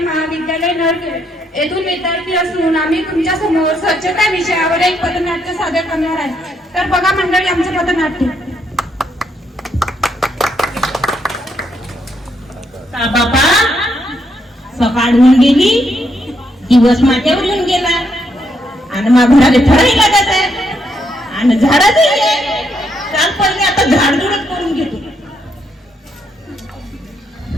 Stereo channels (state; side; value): normal; both; correlation 0.76